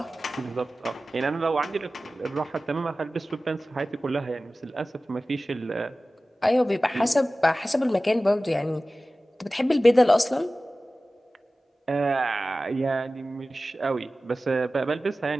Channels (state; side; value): normal; both; correlation 0.96